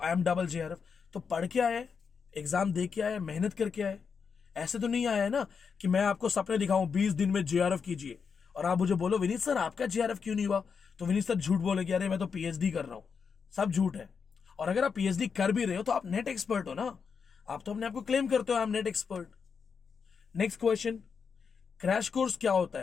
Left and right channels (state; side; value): quieter; right; 6.0 dB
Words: आई एम डबल जेआरएफ। तो पढ़ के आए, एग्जाम दे के आए, मेहनत करके आए। ऐसे तो नहीं आया है ना कि मैं आपको सपने दिखाऊं 20 दिन में जेआरएफ कीजिए और आप मुझे बोलो विनीत सर आपका जेआरएफ क्यों नहीं हुआ। तो विनीत सर झूठ बोलेगे, अरे मैं तो पीएचडी कर रहा हूं। सब झूठ है। और अगर आप पीएचडी कर भी रहे हो तो आप नेट एक्सपर्ट हो ना, आप तो अपने आपको क्लेम करते हो I am net expert. Next question, crash course क्या होता